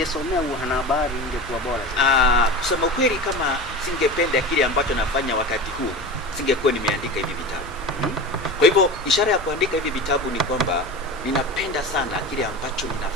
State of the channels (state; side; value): normal; both; correlation 0.30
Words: uanahabari ingekuwa bora zaidi? Kusema ukweli, kama singependa kile ambacho nafanya wakati huu, singekuwa nimeandika hivi vitabu. Kwa hivyo ishara ya kuandika hivi vitabu ni kwamba ninapenda sana kile ambacho